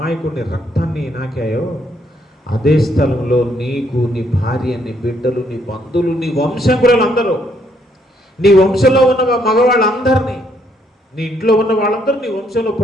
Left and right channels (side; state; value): both; normal; correlation 0.71